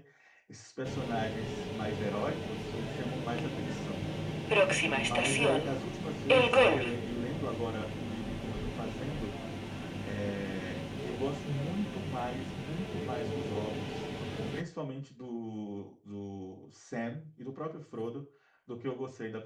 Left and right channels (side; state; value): both; identical; correlation 1.00